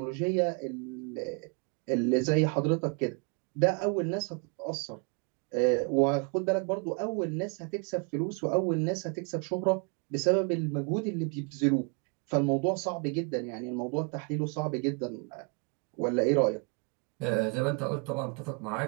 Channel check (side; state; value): left; quieter; 34.5 dB